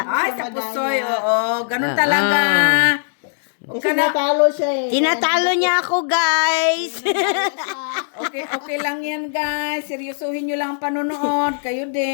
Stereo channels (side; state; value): right; silent; digital silence